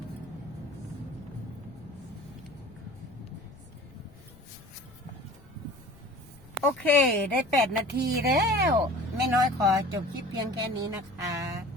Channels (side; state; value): left; noise; rumble, 23 dB below the sound